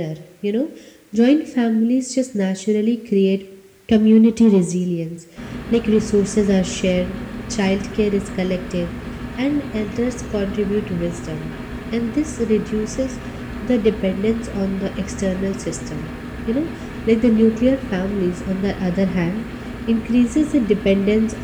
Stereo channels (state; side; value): identical; both; correlation 1.00